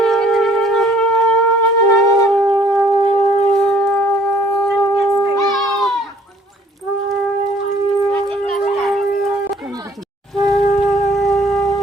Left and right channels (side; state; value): both; normal; correlation 0.59